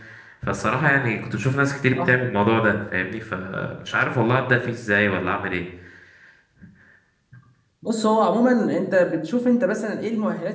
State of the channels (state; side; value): identical; both; correlation 1.00